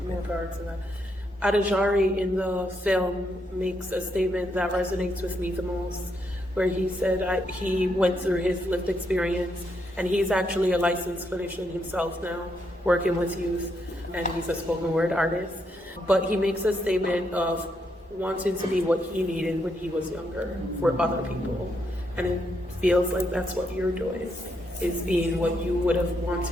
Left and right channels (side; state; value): both; normal; correlation 0.78